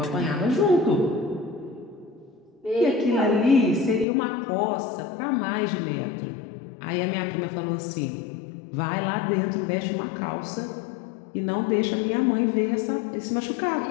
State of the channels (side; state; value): right; drops out; at 4.0 s